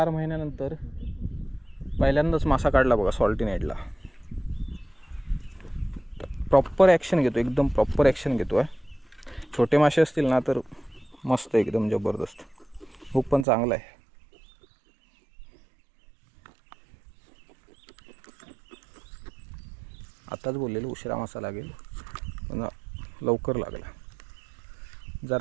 महिन्यानंतर पहिल्यांदाच मासा काढला बघा सॉल्टी नेटला. प्रॉपर ॲक्शन घेतो, एकदम प्रॉपर ॲक्शन घेतो आहे. छोटे मासे असतील ना तर मस्त, एकदम जबरदस्त. हुक पण चांगला आहे. आताच बोललेलो उशिरा मासा लागेल, पण लवकर लागला.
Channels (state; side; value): drops out; left; at 13.5 s